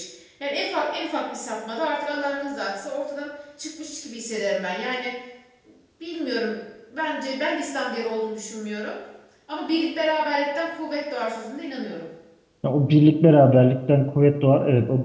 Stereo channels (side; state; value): both; identical; correlation 1.00